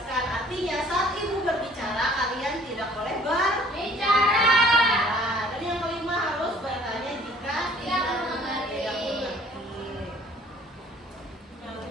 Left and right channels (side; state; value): both; normal; correlation 0.55